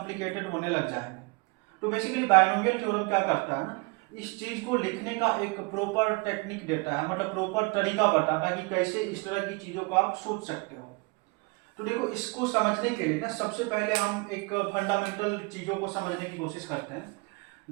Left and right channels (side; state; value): left; quieter; 27.9 dB